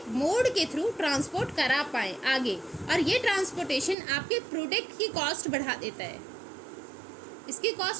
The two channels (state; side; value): drops out; left; at 4.0 s